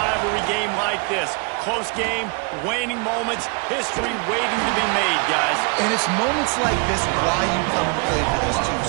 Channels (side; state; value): left; quieter; 33.0 dB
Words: game like this. Close game, waning moments, history waiting to be made, guys. And it's moments like this why you come and play for these two